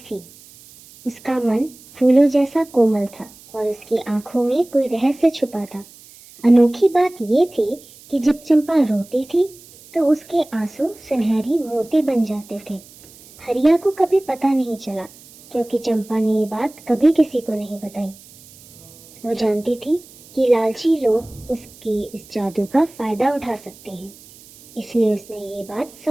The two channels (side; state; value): right; noise; hiss, 23 dB below the sound